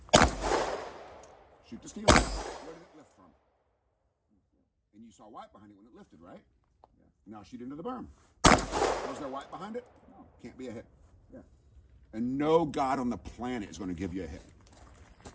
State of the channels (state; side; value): identical; both; correlation 1.00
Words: Shoot the steel. Where did it lift from? And you saw white behind it when it lifted, right? Yeah. Now shoot into the berm. Was there white behind it? No. Can't be a hit. Yeah. And no God on the planet is going to give you a hit.